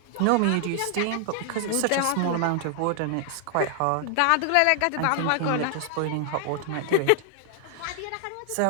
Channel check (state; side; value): different; both; correlation 0.00